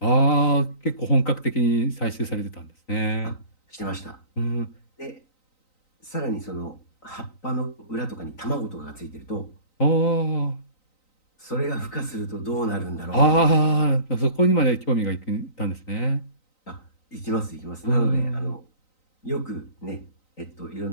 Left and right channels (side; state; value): right; late; 3.9 ms